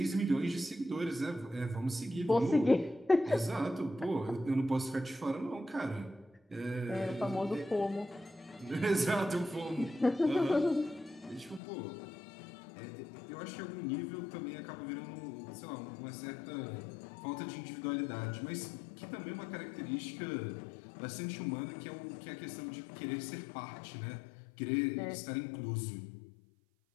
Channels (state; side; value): drops out; right; at 11.6 s